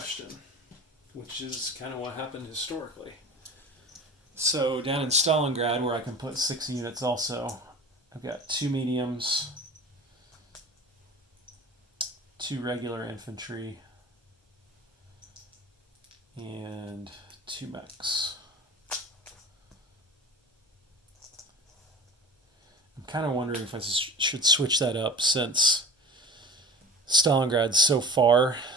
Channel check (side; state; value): both; normal; correlation 0.36